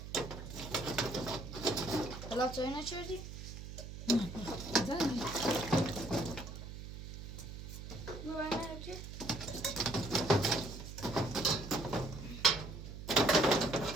حالا چای نچردی؟ زنی. ببرم چی؟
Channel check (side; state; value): right; noise; hum, 10 dB below the sound